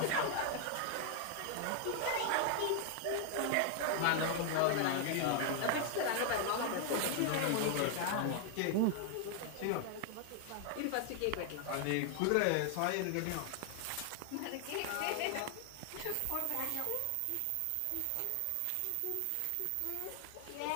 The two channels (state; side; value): different; both; correlation 0.00